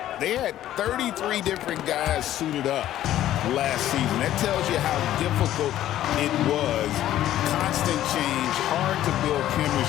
They had 33 different guys suited up last season. That tells you how difficult it was. Constant change, hard to build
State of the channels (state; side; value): quieter; right; 12.8 dB